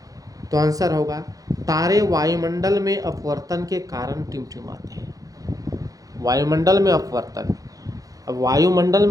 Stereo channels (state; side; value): late; left; 0.17 ms